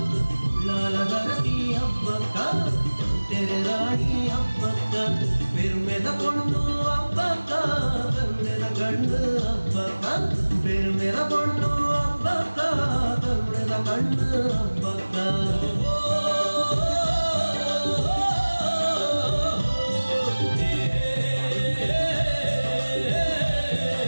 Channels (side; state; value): both; inverted; correlation -1.00